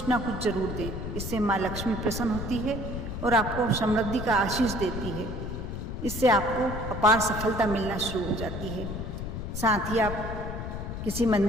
ना कुछ जरूर दें। इससे माँ लक्ष्मी प्रसन्न होती है और आपको समृद्धि का आशीष देती है। इससे आपको अपार सफलता मिलना शुरू हो जाती है। साथ ही आप किसी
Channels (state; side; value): noise; left; rumble, 5 dB below the sound